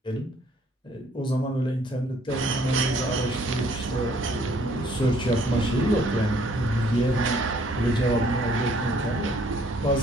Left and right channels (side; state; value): both; normal; correlation 0.62